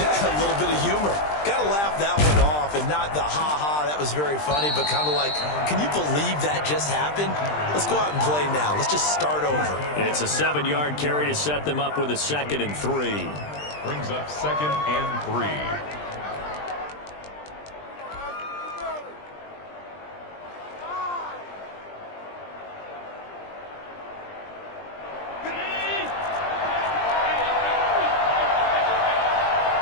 little bit of humor. Got to laugh that one off and not the ha-ha, that was very funny, but kind of like, can you believe that just happened? Let's go out and play now. Let's just start over. It's a 7-yard carry to set them up with a 2nd and 3. Brings up 2nd and 3.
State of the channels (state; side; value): late; right; 20 ms